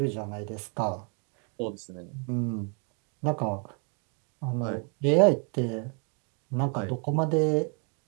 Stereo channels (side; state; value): left; quieter; 38.0 dB